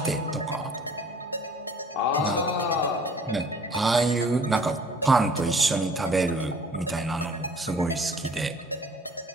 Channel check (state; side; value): normal; both; correlation 0.54